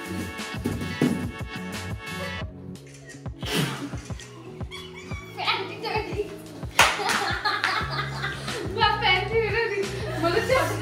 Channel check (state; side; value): identical; both; correlation 1.00